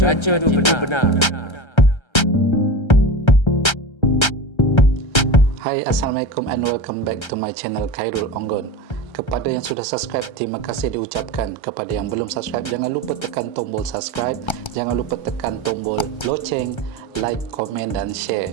itu benar. Hai, Assalamualaikum and welcome back to my channel Khairul Onggon. Kepada yang sudah subscribe, terima kasih diucapkan. Kepada yang belum subscribe, jangan lupa tekan tombol subscribe. Jangan lupa tekan tombol loceng, like, komen dan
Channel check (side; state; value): right; late; 1.3 ms